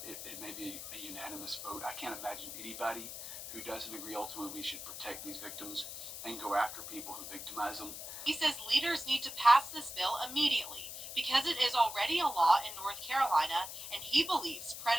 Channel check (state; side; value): noise; left; hiss, 9 dB below the sound